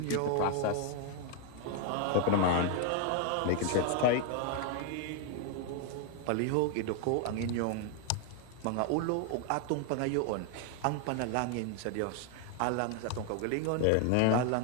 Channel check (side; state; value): both; different; correlation 0.00